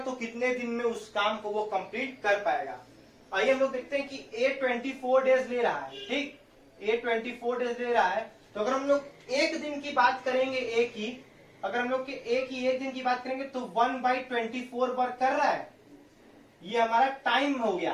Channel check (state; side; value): identical; both; correlation 1.00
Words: कितने दिन में उस काम को वो कंप्लीट कर पाएगा। आइए हम लोग देखते हैं कि ए 24 डेज ले रहा है, ठीक, ए 24 डेज ले रहा है। तो अगर हम लोग एक दिन की बात करेंगे ए की, अगर हम लोग एक दिन की बात करेंगे तो 1/24 वर्क कर रहा है, ये हमारा टाइम हो